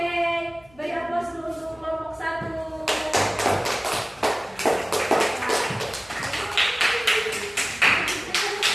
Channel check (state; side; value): noise; left; hum, 28 dB below the sound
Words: beri aplaus dulu untuk kelompok 1.